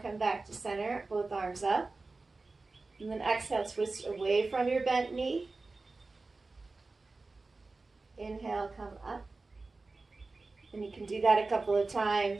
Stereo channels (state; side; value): quieter; left; 3.6 dB